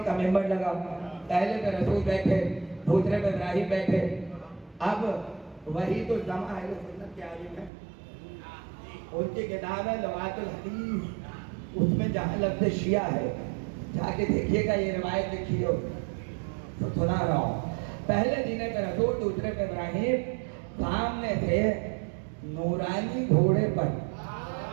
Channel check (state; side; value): drops out; left; at 7.7 s